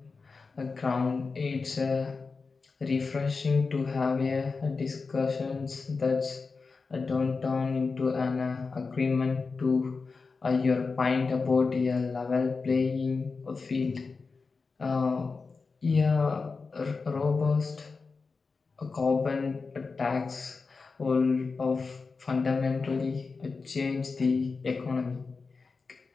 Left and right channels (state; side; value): quieter; right; 4.5 dB